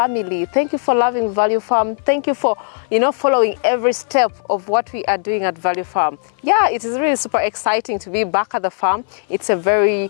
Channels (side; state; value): right; silent; 61 dB below the other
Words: Thank you for loving Value Farm. Thank you for, following every step of what we are doing at Value Farm. Yeah, it is really super exciting to be back at the farm. It's a very